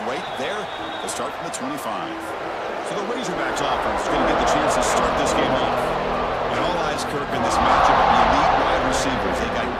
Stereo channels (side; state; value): both; identical; correlation 1.00